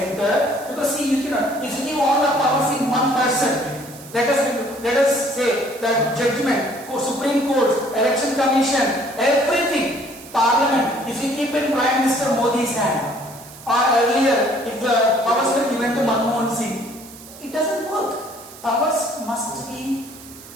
Because see, you cannot, if you give all the powers in one person, let us say that judgment, Supreme Court, Election Commission, everything, Parliament, if you keep in Prime Minister Modi's hand, or earlier, if the powers were given to Manmohan Singh, it doesn't work. Powers must be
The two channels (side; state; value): right; noise; hiss, 18 dB below the sound